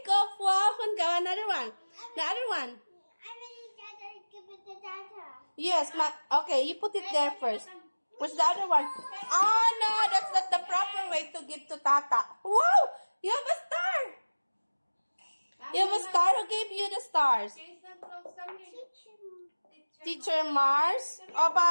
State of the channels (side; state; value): both; inverted; correlation -1.00